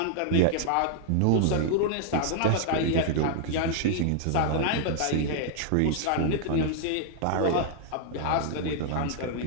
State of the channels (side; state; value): both; different; correlation -0.01